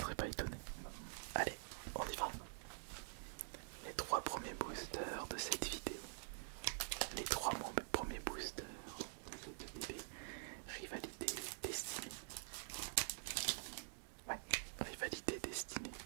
pas étonné. Allez, on y va. Les 3 premiers boosters de cette vidéo. Les 3 premiers boosters de cette ETB Rivalité Destinée. Ouais, Rivalité Destinée.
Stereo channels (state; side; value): silent; left; digital silence